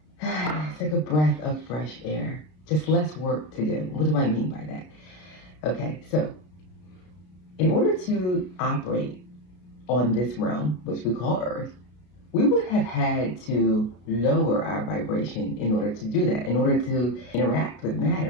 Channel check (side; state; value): right; late; 33 ms